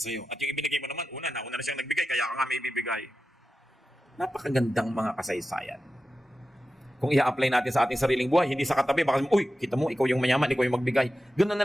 sa'yo. At yung ibinigay mo naman, nauna na siyang nagbigay, kaya ka nga may ibibigay. Napakagandang mga kasaysayan. Kung i-apply natin sa ating sariling buhay, hindi sa katabi, baka, uy, kita mo, ikaw yung mayaman, ikaw yung magbigay. Ganun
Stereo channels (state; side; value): normal; both; correlation 0.93